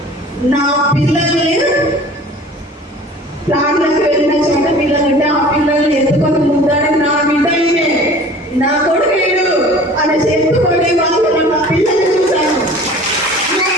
నా పిల్లల్ని ప్లాట్లకు వెళ్ళిన చోట పిల్లలుంటే ఆ పిల్లల్ని ఎత్తుకొని ముద్దాడి నా బిడ్డ ఇవే నా కొడుకు వీడు అని చెప్పుకొని వాళ్ళు నా పిల్లల్ని చూశాను.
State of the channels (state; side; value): normal; both; correlation 0.45